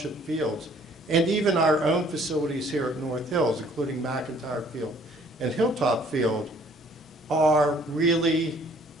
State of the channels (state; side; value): normal; both; correlation 0.58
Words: fields and even our own facilities here at North Hills, including McIntyre Field and Hilltop Field, are really